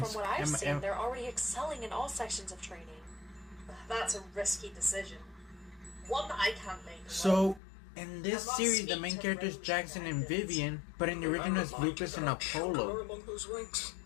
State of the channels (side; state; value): right; drops out; at 7.6 s